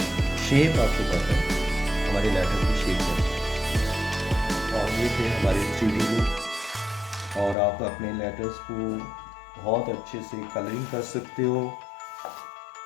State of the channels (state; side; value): drops out; right; at 7.6 s